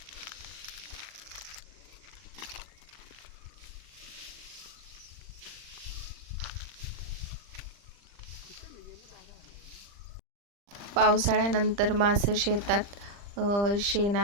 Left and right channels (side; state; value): left; late; 40 ms